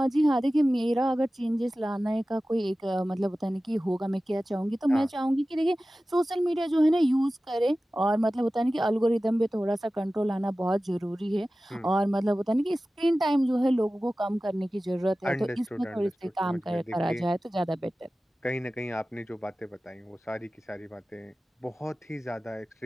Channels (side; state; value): both; normal; correlation 0.96